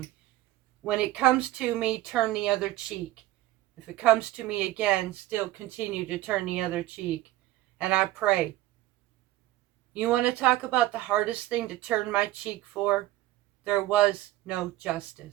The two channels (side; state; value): left; quieter; 15.9 dB